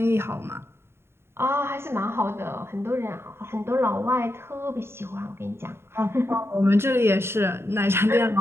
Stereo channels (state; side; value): late; left; 0.12 ms